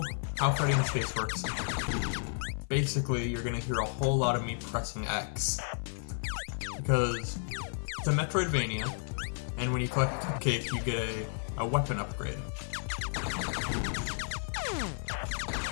how Freddy in space works, basically you're gonna hear a whole lot of me pressing X. Because it's a Metroidvania, and when you collect a cupcake, you get a weapon upgrade.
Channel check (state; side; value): silent; right; digital silence